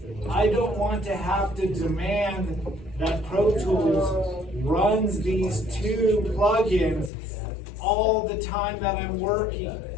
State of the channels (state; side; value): drops out; right; at 7.1 s